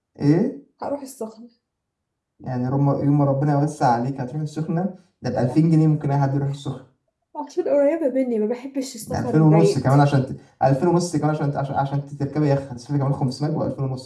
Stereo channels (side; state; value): both; identical; correlation 1.00